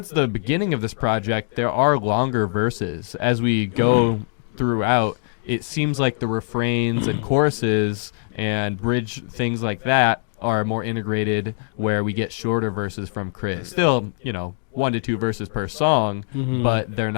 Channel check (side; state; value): right; silent; digital silence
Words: the beginning of this project, there are longer verses. As we go throughout, it seems like the refrains and choruses and bridge things like that are more integrated, where we get shorter verses from K.R.I.T. Still, 1 to 2 verses per song, but they're